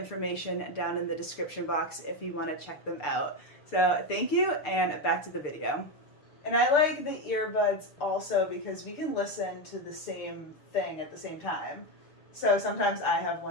down in the description box if you want to check them out. So thank you, and back to the video. And I like the earbuds also because we can listen to the same thing at the same time. So sometimes I have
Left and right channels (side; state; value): right; late; 6.7 ms